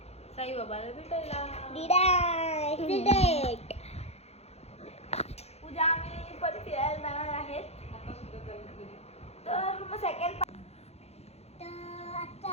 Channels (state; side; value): late; right; 0.31 ms